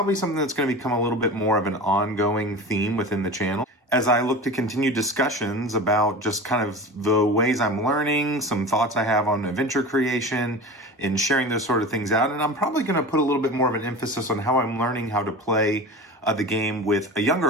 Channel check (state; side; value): normal; both; correlation 0.32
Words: something that's going to become a little bit more of an ongoing theme within the channel as I look to continue discussions about just kind of the ways I'm learning, some thoughts I have on adventure creation, and sharing those sort of things out. And I'm probably going to put a little bit more of an emphasis on how I'm learning how to play the game with a